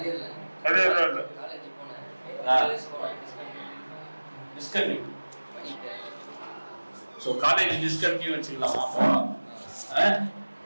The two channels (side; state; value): both; inverted; correlation -1.00